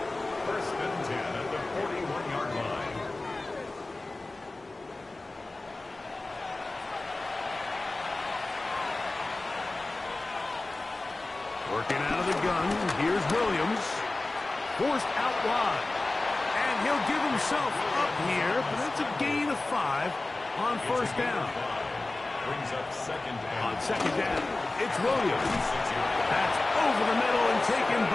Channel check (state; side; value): quieter; right; 3.1 dB